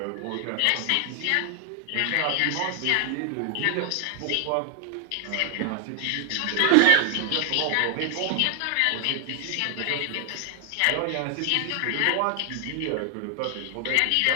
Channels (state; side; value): different; both; correlation 0.00